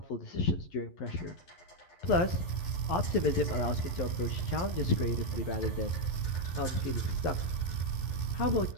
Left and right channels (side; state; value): right; late; 11 ms